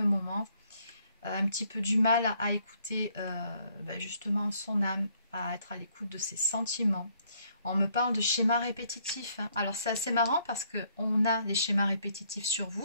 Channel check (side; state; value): both; inverted; correlation -0.68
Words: moment, a un petit peu du mal à écouter justement son âme, à être à l'écoute de ses sentiments. On me parle de schémas répétitifs, hein. Alors c'est assez marrant parce qu'on a les schémas répétitifs sur